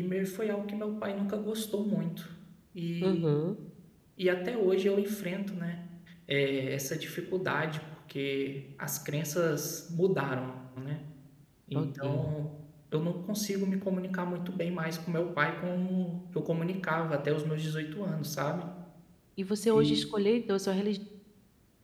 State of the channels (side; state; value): both; identical; correlation 1.00